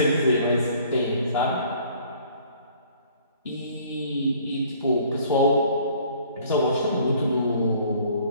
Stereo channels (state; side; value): inverted; both; correlation -0.56